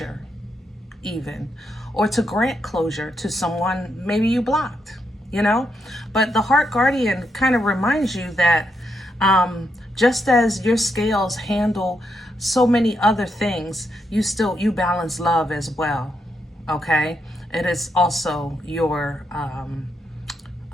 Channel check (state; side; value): normal; both; correlation 0.80